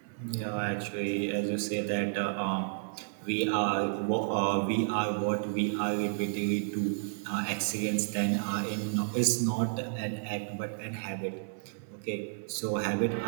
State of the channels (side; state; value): left; silent; 57 dB below the other